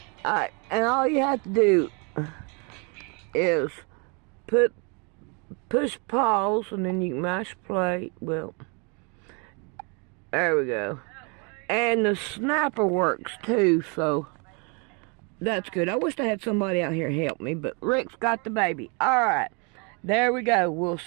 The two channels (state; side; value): quieter; left; 33.8 dB